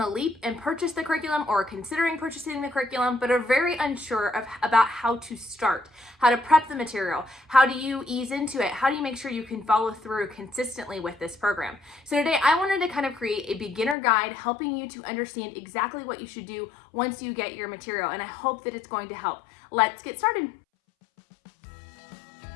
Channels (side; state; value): right; drops out; at 14.0 s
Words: leap and purchased the curriculum or are considering purchasing the curriculum, but are very unsure about how to start, how to prep the material, how do you ease into it, how do you make sure you can follow through consistently with this program. So today I wanted to kind of create a beginner guide helping you to understand exactly what you should do once you get your material, and I hope that it's going to help. Let's get started.